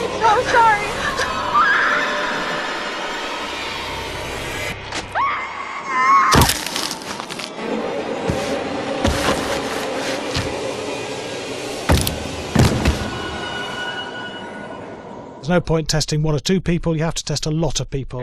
I'm so sorry. There's no point testing 1 or 2 people, you have to test a lot of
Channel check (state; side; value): identical; both; correlation 1.00